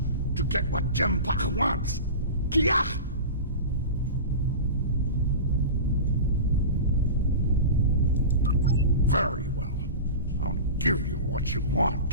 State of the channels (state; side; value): inverted; both; correlation -0.30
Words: to get what Jimpak wants. Kiach! Very well. I'll give you what you